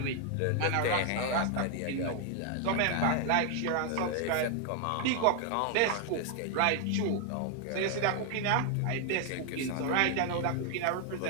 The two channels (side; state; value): both; different; correlation 0.00